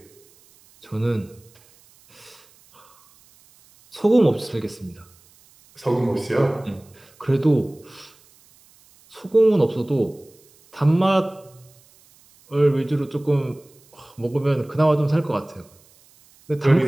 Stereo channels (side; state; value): right; noise; hiss, 29 dB below the sound